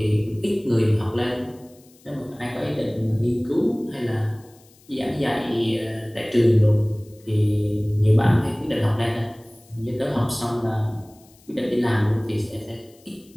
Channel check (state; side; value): noise; left; hiss, 29 dB below the sound